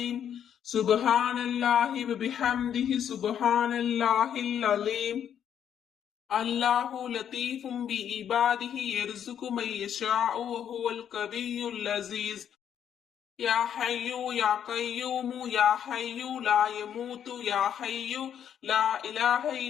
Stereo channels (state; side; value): quieter; right; 9.1 dB